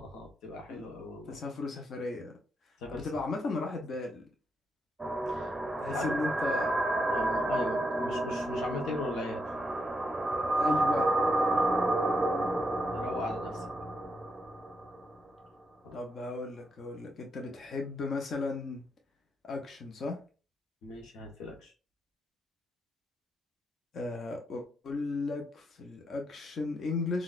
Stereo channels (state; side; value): normal; both; correlation 0.81